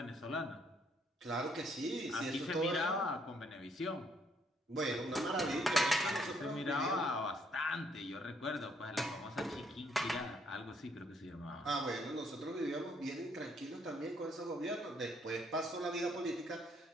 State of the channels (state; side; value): normal; both; correlation 0.69